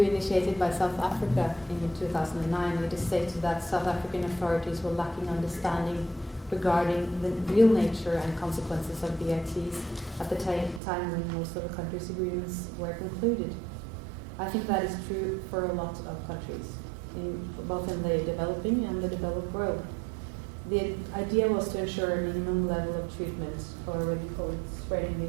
by South Africa in 2009, it is stated that South African authorities were lacking understanding regarding the real nature and consequences of BITs at the time when most of the countries' agreements were concluded. I think that is true for a lot of countries. both in the developing and the developed world. The idea was to ensure a minimum level of treatment, or what you call it, spreading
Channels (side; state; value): left; drops out; at 10.8 s